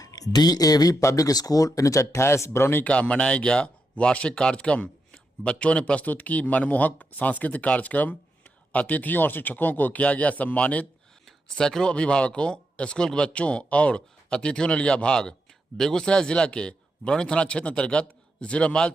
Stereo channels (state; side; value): normal; both; correlation 0.84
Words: DAV public school 1928 Barauni का मनाया गया वार्षिक कार्यक्रम। बच्चों ने प्रस्तुत की मनमोहक सांस्कृतिक कार्यक्रम। अतिथियों और शिक्षकों को किया गया सम्मानित। सैकड़ों अभिभावकों, स्कूल के बच्चों और अतिथियों ने लिया भाग। बेगूसराय जिला के बरौनी थाना क्षेत्र अंतर्गत 0 माइल